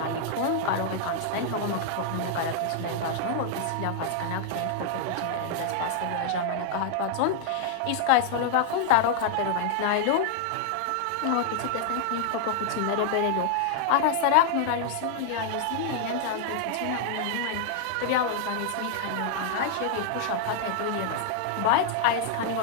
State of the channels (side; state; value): both; different; correlation -0.01